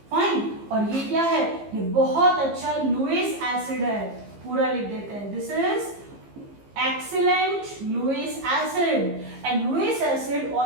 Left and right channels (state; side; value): late; left; 15 ms